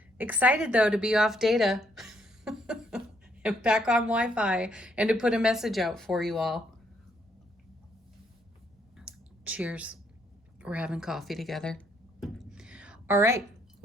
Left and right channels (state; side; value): normal; both; correlation 0.71